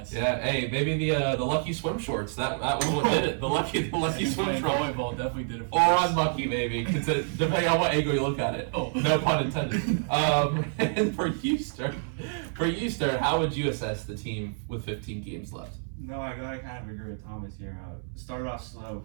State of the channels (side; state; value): left; silent; 59 dB below the other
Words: Yeah, hey, maybe the lucky swim shorts. That was what did it. The lucky swim shorts. Volleyball definitely did it for us. us. Or unlucky, maybe, depending on what angle you look at it. Oh. No pun intended. And for you, Stern, how would you assess the team with 15 games left? No, I gotta kind of agree with Thomas here. Started off slow,